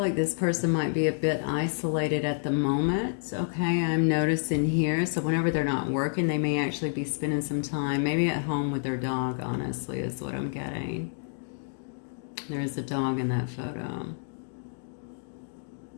this person might be a bit isolated at the moment, okay? I'm noticing here, so whenever they're not working, they may actually be spending some time, maybe at home with their dog, honestly, is what I'm getting. There is a dog in that photo.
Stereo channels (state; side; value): silent; right; digital silence